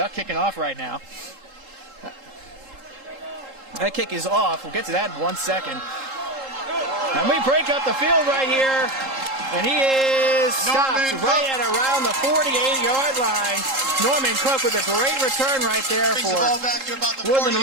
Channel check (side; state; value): left; late; 3.7 ms